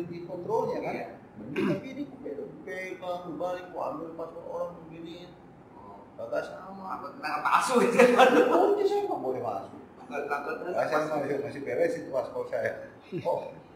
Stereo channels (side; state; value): both; identical; correlation 1.00